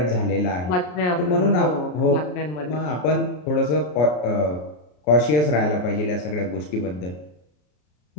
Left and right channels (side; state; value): right; late; 33 ms